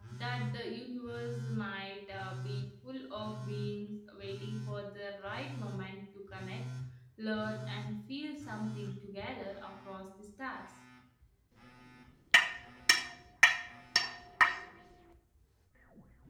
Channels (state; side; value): identical; both; correlation 1.00